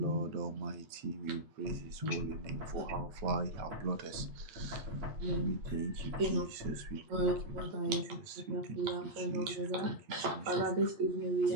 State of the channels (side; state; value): left; late; 8.4 ms